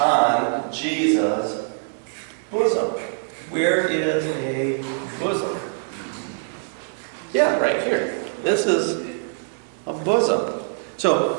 Jesus' bosom. Where is a bosom? Yeah, right here. This is a bosom.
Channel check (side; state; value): left; silent; digital silence